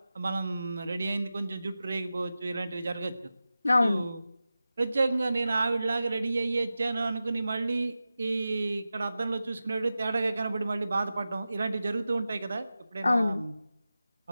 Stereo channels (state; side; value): inverted; both; correlation -0.94